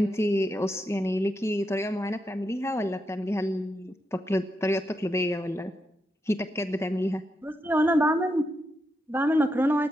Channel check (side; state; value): both; normal; correlation 0.84